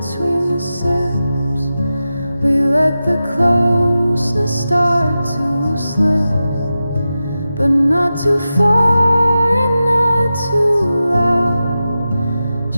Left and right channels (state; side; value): inverted; both; correlation -0.92